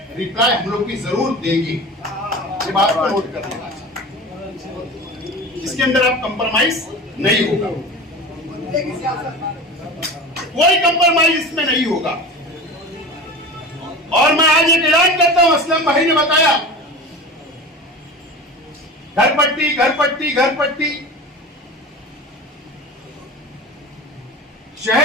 रिप्लाई हम लोग भी जरूर देंगे। ये बात को नोट कर लेना चाहिए, जिसके अंदर आप कंप्रोमाइज नहीं होगा, कोई कंप्रोमाइज इसमें नहीं होगा। और मैं आज एक ऐलान करता हूं, असलम भाई ने बताया घर पट्टी घर पट्टी घर पट्टी,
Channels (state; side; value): normal; both; correlation 0.32